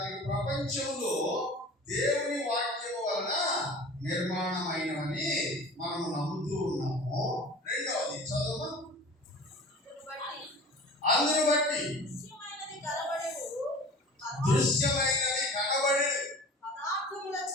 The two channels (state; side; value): normal; both; correlation 0.41